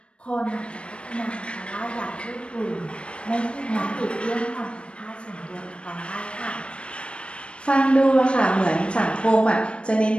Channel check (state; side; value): late; right; 0.058 ms